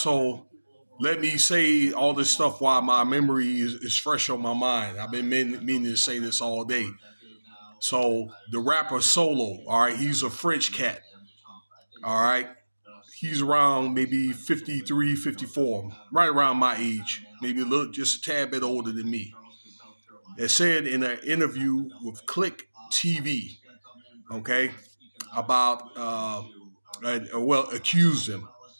let me say all this stuff while my memory is fresh on my mind. I've been meaning to say this all day. So the rapper Solo, all right, he's a French cat. All right. He's around maybe 53, 54, right around my age, maybe a little, just a tad bit older than me. It said in an interview with Click TV, okay, about accused him.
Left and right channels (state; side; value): inverted; both; correlation -1.00